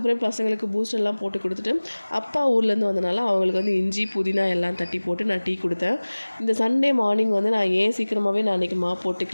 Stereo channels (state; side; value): inverted; both; correlation -1.00